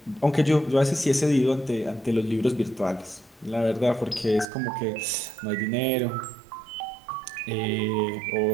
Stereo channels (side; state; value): left; drops out; at 4.5 s